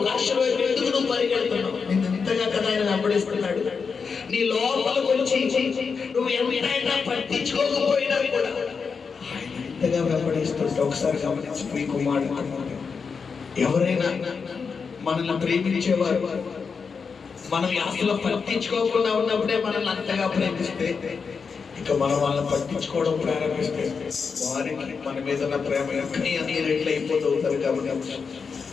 ఎందుకు నువ్వు పరిగెడుతున్నావు? నిన్ను ఇంతగా కదా ఆయన వెంబడిస్తున్నాడు. నీ లోపలికి వచ్చి నువ్వు ఎంతైనా పట్టించుకోకపోయినా కూడా ఆయన ఇంతగా వెంబడిస్తుంటే ఒకసారి గమనించి మీ కుమారుడు ఎవరైనా మనల్ని ప్రేమించేవారు మనం అసలు పట్టించుకోకుండా ఉన్నప్పుడే మనల్ని అంతగా ప్రేమిస్తే, ఇక మనం వాళ్ళని పట్టించుకోవడం ప్రారంభిస్తే వారికి మన మీద ఉన్న ప్రేమ ఎక్కడి అన్ని రెట్లు అయిపోతారు. కాబట్టి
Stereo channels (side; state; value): right; quieter; 5.5 dB